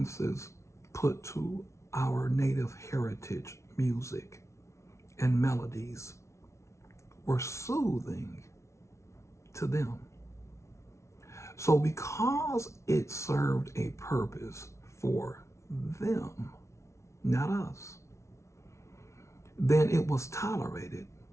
put to our native heritage music and melodies were soothing to them. So because it served a purpose for them, not us, then it was tolerated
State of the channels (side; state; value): right; late; 0.13 ms